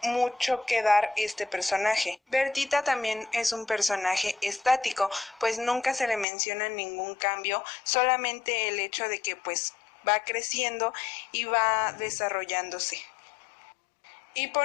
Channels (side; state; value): right; drops out; at 6.2 s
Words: mucho que dar este personaje. Bertita también es un personaje estático, pues nunca se le menciona ningún cambio, solamente el hecho de que pues va creciendo y va desarrollándose. Y